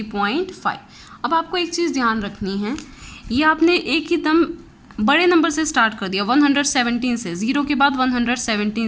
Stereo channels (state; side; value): identical; both; correlation 1.00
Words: अब आपको एक चीज़ ध्यान रखनी है, ये आपने एक ही दम बड़े नंबर से स्टार्ट कर दिया 117 से, 0 के बाद